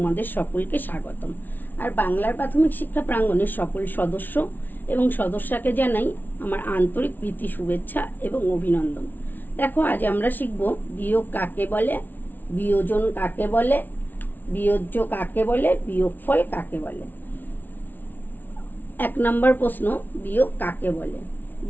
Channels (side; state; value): right; late; 0.086 ms